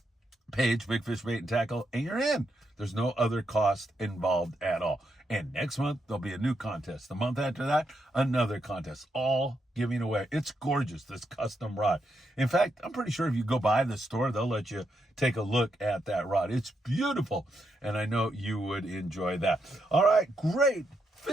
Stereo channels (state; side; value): normal; both; correlation 0.81